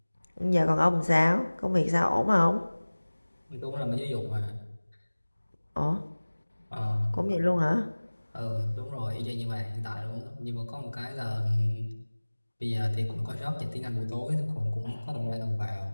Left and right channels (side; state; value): both; inverted; correlation -1.00